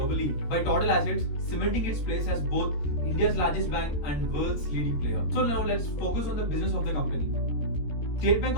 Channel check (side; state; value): right; late; 13 ms